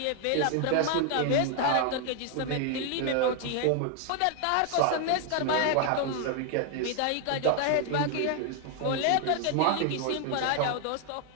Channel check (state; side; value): different; both; correlation 0.00